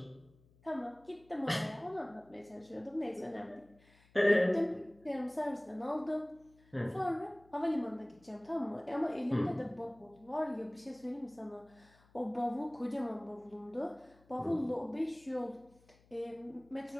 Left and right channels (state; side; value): noise; left; hum, 29 dB below the sound